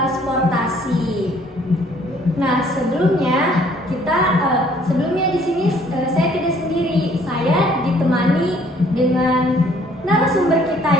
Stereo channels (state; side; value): normal; both; correlation 0.60